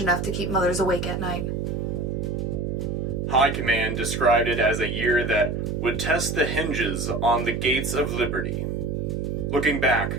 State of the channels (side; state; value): right; noise; hum, 2 dB below the sound